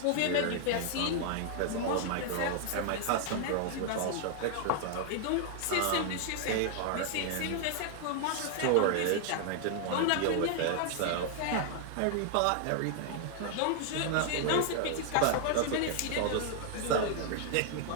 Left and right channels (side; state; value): both; different; correlation 0.00